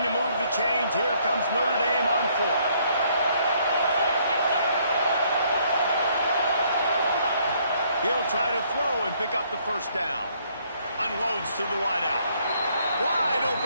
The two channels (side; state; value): both; inverted; correlation -0.67